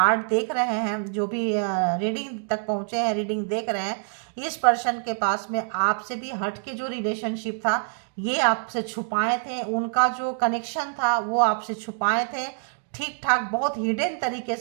देख रहे हैं, जो भी रीडिंग तक पहुँचे हैं, रीडिंग देख रहे हैं, इस पर्सन के पास में आपसे भी हट के जो रिलेशनशिप था, ये आपसे छुपाए थे। उनका जो कनेक्शन था वो आपसे छुपाए थे, ठीक ठाक बहुत हिडन तरीके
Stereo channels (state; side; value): silent; left; digital silence